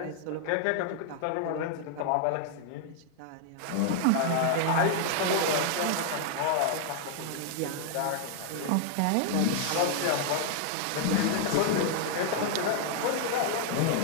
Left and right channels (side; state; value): both; different; correlation 0.00